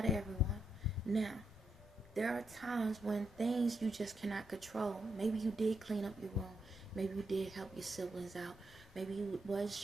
to everyone. Now, there are times when things you just cannot control. Maybe you did clean up your room. Maybe you did help your siblings out. Maybe you was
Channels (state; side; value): normal; both; correlation 0.81